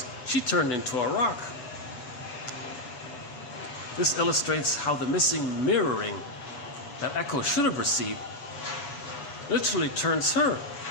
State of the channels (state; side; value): late; right; 7.1 ms